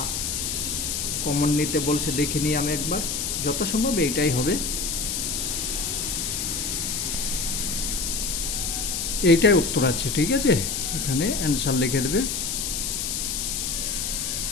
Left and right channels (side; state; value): left; noise; hiss, 1 dB below the sound